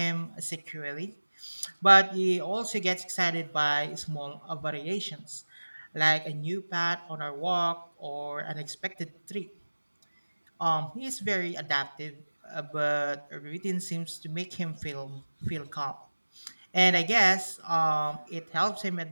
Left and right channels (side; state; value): both; inverted; correlation -1.00